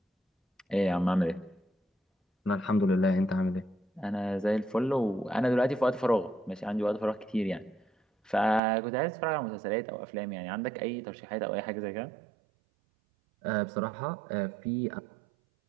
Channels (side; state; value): left; drops out; at 8.6 s